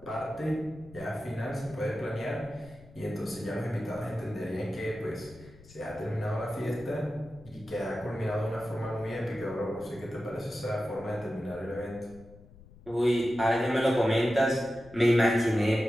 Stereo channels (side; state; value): left; noise; rumble, 21 dB below the sound